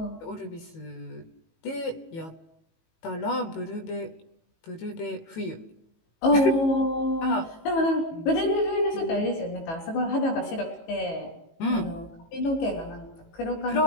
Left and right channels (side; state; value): right; late; 18 ms